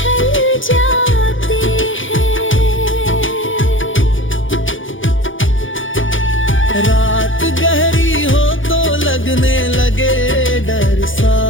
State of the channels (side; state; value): right; late; 0.57 ms